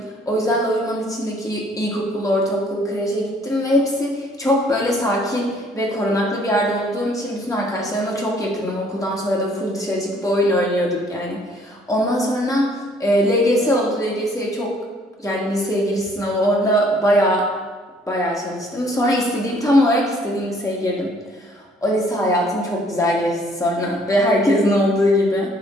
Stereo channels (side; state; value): both; normal; correlation 0.61